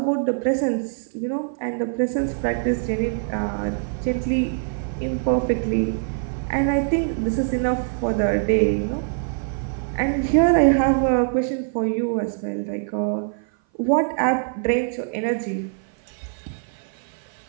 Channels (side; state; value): left; silent; 56 dB below the other